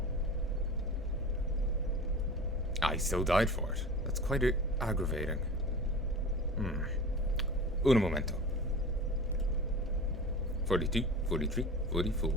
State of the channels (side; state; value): both; normal; correlation 0.35